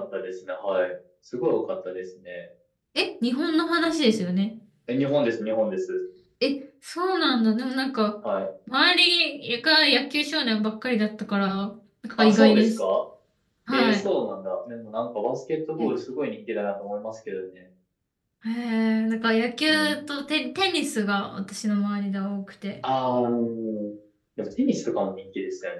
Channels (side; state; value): both; identical; correlation 1.00